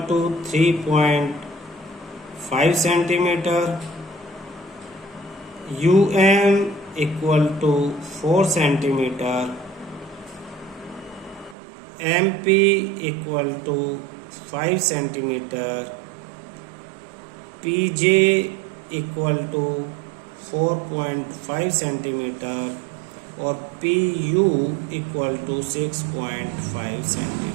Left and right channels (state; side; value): drops out; left; at 11.6 s